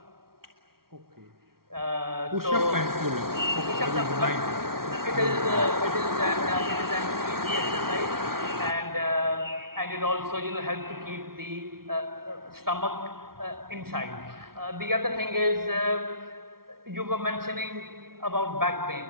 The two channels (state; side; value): late; left; 0.93 ms